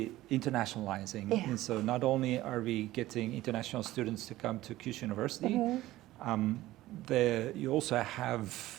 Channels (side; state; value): left; quieter; 16.3 dB